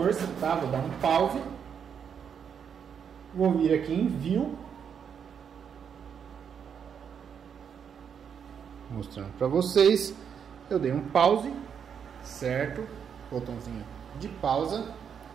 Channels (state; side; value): quieter; left; 7.5 dB